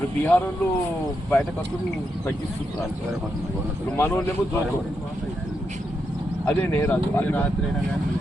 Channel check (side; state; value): both; normal; correlation 0.83